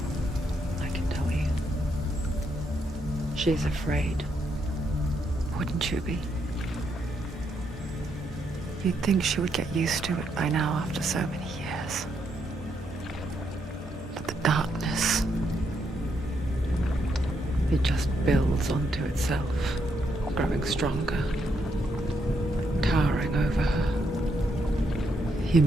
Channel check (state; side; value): normal; both; correlation 0.78